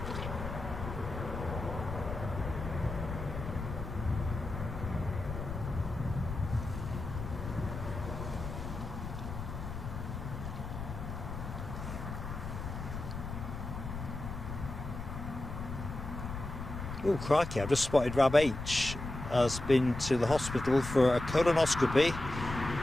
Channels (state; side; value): noise; left; rumble, 7 dB below the sound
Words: Oh crikey, I've just spotted Rab H has been to the hospital for a colonoscopy